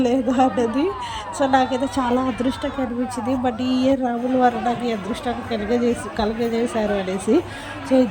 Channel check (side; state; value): both; identical; correlation 1.00